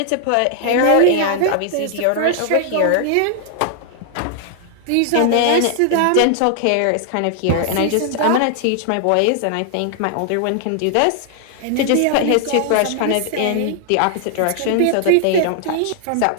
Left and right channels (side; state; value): both; different; correlation 0.00